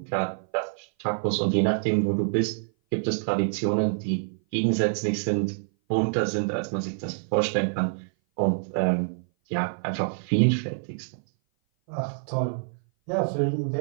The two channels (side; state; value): left; silent; 57 dB below the other